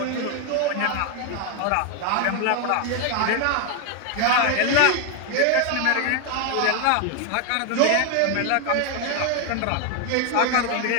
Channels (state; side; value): different; both; correlation 0.01